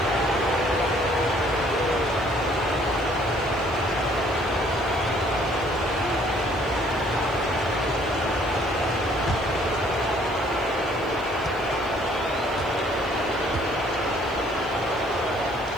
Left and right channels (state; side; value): noise; right; hiss, 27 dB below the sound